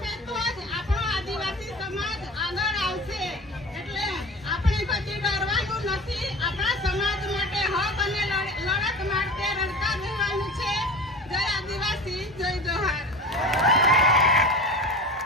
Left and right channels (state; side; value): normal; both; correlation 0.35